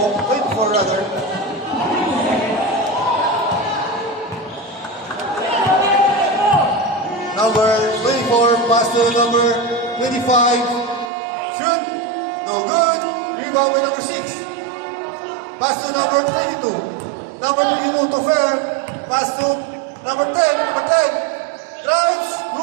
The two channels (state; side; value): drops out; left; at 11.1 s